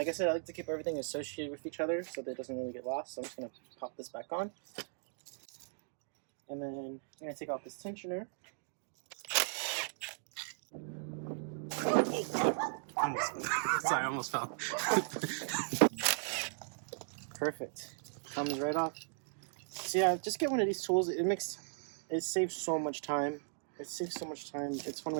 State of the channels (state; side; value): silent; left; digital silence